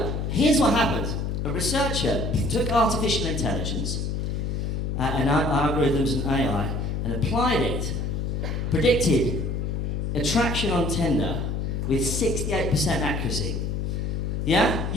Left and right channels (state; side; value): noise; left; hum, 1 dB below the sound